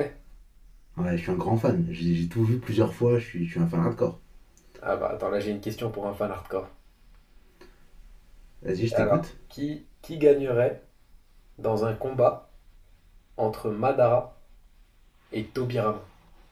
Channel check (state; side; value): identical; both; correlation 1.00